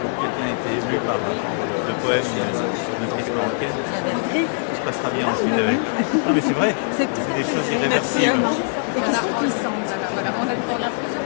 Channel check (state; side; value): silent; right; digital silence